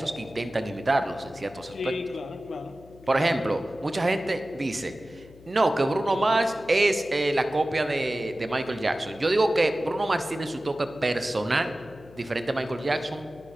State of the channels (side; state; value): left; noise; hum, 22 dB below the sound